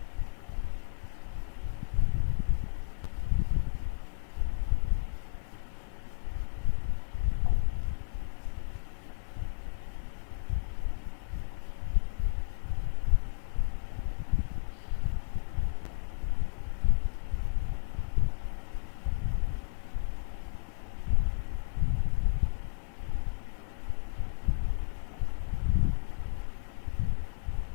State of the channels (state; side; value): silent; right; 56 dB below the other